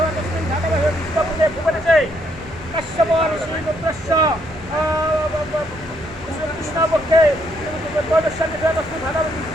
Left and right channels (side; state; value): left; noise; rumble, 19 dB below the sound